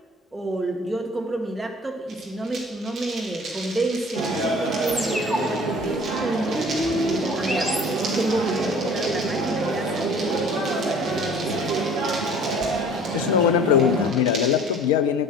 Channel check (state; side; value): normal; both; correlation 0.48